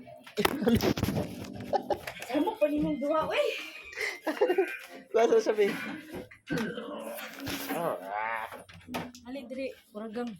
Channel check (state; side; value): identical; both; correlation 1.00